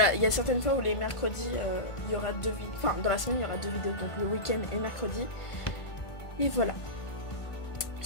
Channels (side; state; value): right; late; 1.5 ms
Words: il y a certaines fois où les mercredis, il y aura 2 vidéos. Enfin, dans la semaine, il y aura 2 vidéos, donc le week-end et mercredi. Et voilà.